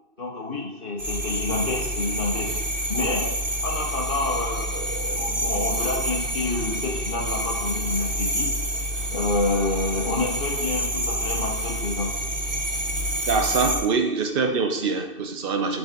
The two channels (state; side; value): late; left; 2.6 ms